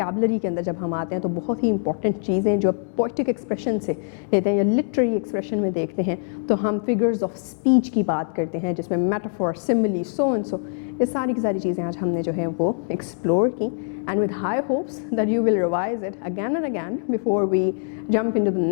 के अंदर जब हम आते हैं तो बहुत ही इंपॉर्टेंट चीज़ें जो पोइटिक एक्सप्रेशन से लेते हैं या लिटरेरी एक्सप्रेशन में देखते हैं, तो हम फिगर्स ऑफ स्पीच की बात करते हैं जिसमें metaphor, simile, so and so, ये सारी की सारी चीज़ें आज हमने जो है वो एक्सप्लोर की. And with high hopes that you will revise it again and again before we jump into the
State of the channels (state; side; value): silent; right; digital silence